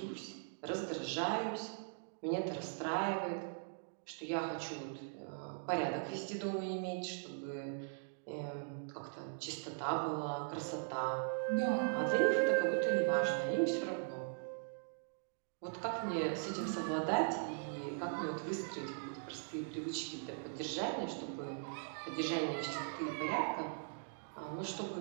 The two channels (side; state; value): left; silent; digital silence